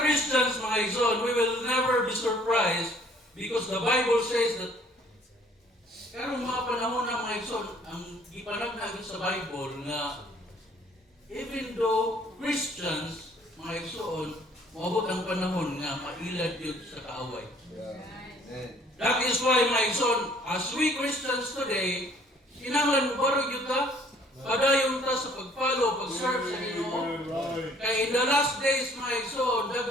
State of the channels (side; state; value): both; normal; correlation 0.59